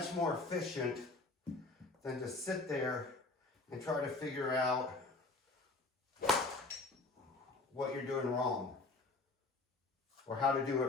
more efficient than to sit there and try to figure out what you're doing wrong or how to do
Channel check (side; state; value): right; quieter; 3.4 dB